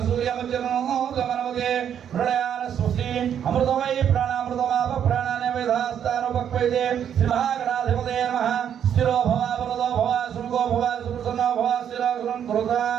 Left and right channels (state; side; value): quieter; left; 9.1 dB